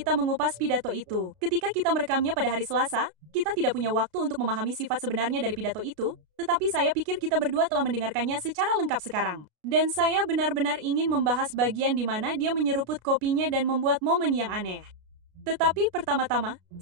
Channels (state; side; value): late; left; 33 ms